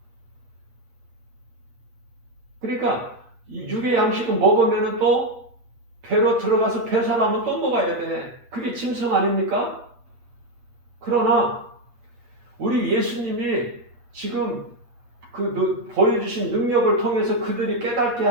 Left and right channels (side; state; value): left; late; 8.4 ms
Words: 그러니까 이 육의 양식은 먹으면 또 배로 들어가서 배설하면 또 먹어야 돼. 그게 짐승 아닙니까? 그러나 우리 예수님이 지금 보여주신 능력을 통해서 그들이 깨닫게